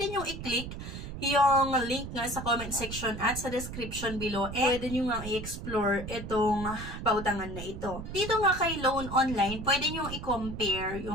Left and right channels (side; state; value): right; noise; rumble, 8 dB below the sound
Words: nyo i-click yung link nga sa comment section at sa description below. Pwede nyo nga i-explore itong pautangan na ito. Dito nga kay Loan Online, pwede nyo i-compare